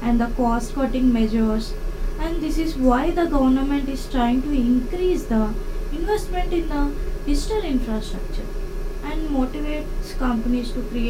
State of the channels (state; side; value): identical; both; correlation 1.00